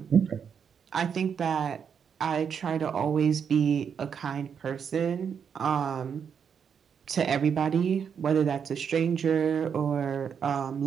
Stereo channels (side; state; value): left; quieter; 7.2 dB